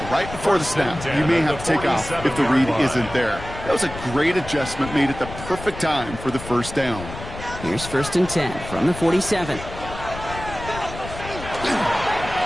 right before the snap, you may have to take off if the read isn't there. That was a great adjustment made at the perfect time for the 1st down. Here's 1st and 10 from the 47.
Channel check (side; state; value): left; noise; rumble, 11 dB below the sound